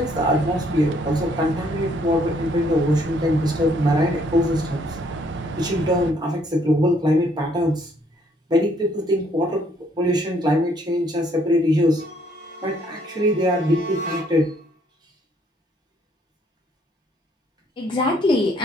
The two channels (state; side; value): normal; both; correlation 0.66